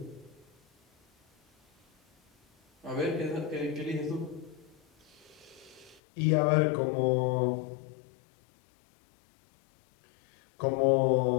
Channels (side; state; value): right; drops out; at 6.0 s